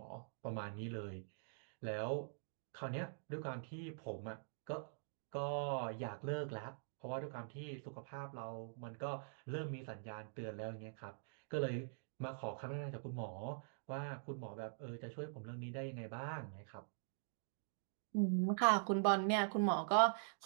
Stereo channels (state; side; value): silent; left; digital silence